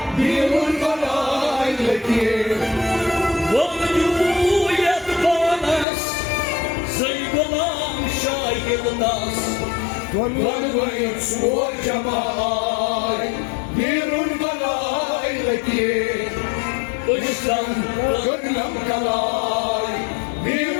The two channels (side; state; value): right; drops out; at 5.9 s